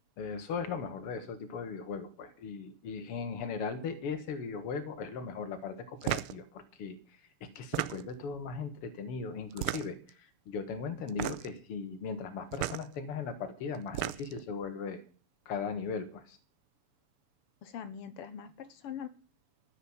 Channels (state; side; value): late; right; 7.1 ms